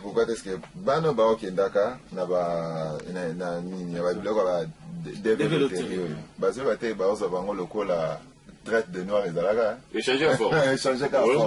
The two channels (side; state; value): both; identical; correlation 1.00